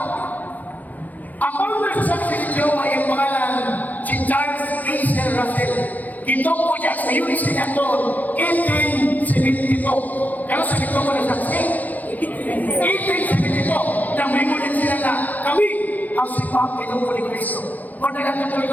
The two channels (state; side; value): late; right; 0.082 ms